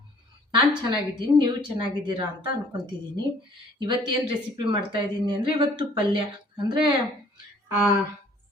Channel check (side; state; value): both; normal; correlation 0.57